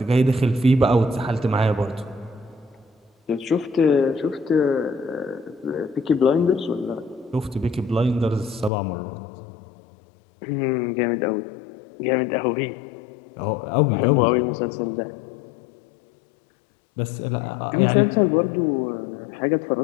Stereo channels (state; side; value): drops out; right; at 8.7 s